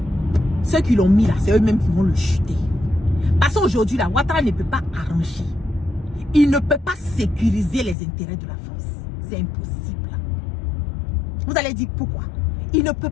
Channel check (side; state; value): right; drops out; at 8.0 s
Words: ceux qui l'ont mis là, c'est eux-mêmes qui vont le chuter. Parce qu'aujourd'hui, là, Ouattara ne peut pas arranger. Il ne peut pas sécuriser les intérêts de la France. C'est impossible. Vous allez dire pourquoi? Il ne peut